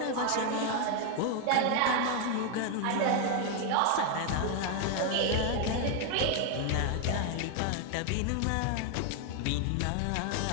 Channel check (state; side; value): different; both; correlation 0.00